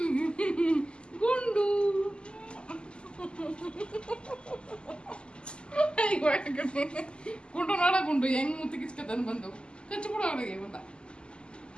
ಗುಂಡು ಗುಂಡು ನೋಡ ಗುಂಡು ಹೆಂಗ್ ಮುತ್ತಿ ಕಿಚ್ಕತನ್ ಬಂದು ಕಚ್ಚು ಬಿಡು ಅವನಿಗೆ ಬಂದ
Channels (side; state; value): right; late; 0.050 ms